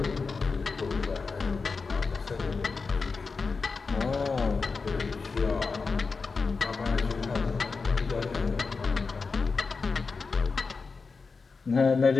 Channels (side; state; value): right; quieter; 4.5 dB